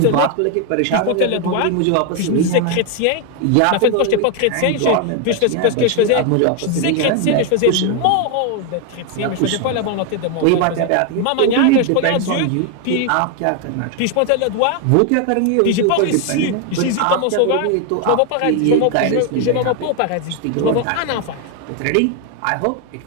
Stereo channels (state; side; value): different; both; correlation 0.01